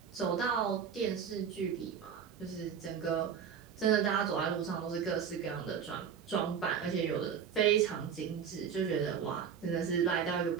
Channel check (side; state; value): left; quieter; 7.5 dB